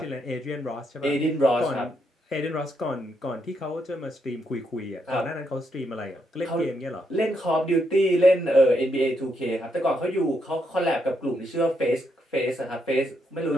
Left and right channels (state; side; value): normal; both; correlation 0.78